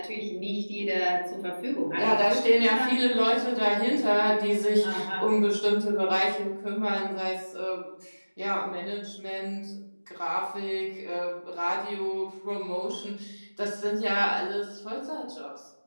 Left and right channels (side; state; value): both; inverted; correlation -1.00